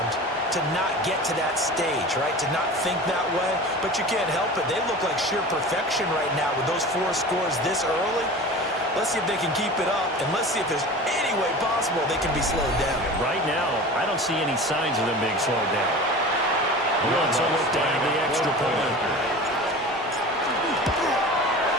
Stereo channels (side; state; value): both; normal; correlation 0.36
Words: to not get to that stage, right? To not think that way, but you can't help it. They look like sheer perfection right now with those 4 scores this early. Let's see if they can keep it up, and let's see if there's any way possible they can be slowed down. Right now, I don't see any signs of them being slowed down. Wants a look down the extra point.